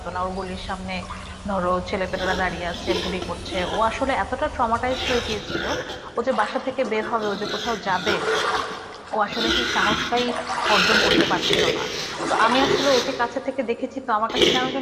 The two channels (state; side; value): identical; both; correlation 1.00